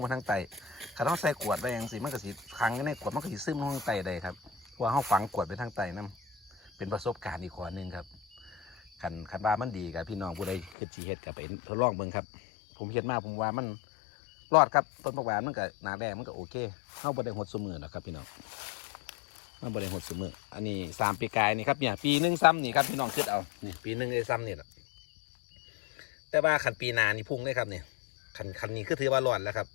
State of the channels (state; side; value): drops out; right; at 10.8 s